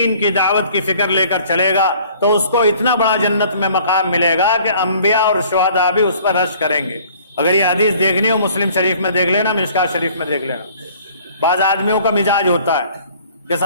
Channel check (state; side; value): inverted; both; correlation -0.54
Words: کی دعوت کی فکر لے کر چلے گا، تو اس کو اتنا بڑا جنت میں مقام ملے گا کہ انبیاء اور شہداء بھی اس پر رشک کریں گے۔ اگر یہ حدیث دیکھنی ہو مسلم شریف میں دیکھ لینا، مشکات شریف میں دیکھ لینا۔ بعض آدمیوں کا مزاج ہوتا ہے کہ